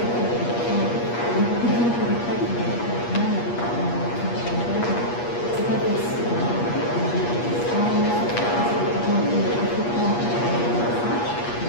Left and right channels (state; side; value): late; right; 8.4 ms